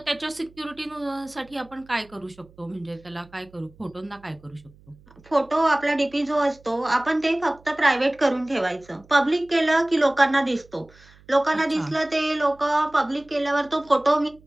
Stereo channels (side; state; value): right; noise; hum, 27 dB below the sound